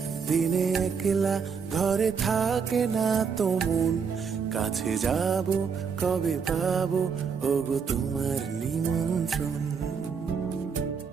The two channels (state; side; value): quieter; left; 6.1 dB